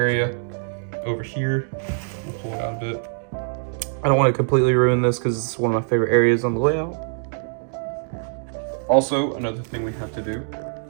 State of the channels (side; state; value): left; silent; digital silence